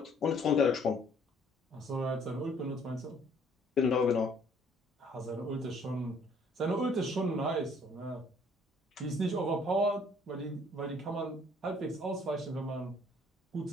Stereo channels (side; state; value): both; normal; correlation 0.60